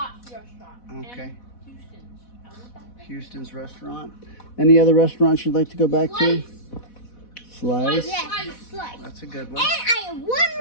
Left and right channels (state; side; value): late; right; 4.1 ms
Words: restaurant. Okay. And Houston's. I want that. Houston's restaurant. Any other restaurants you'd like to go back to? Slice. Slice? Yes, slice. That's a good And one. I have one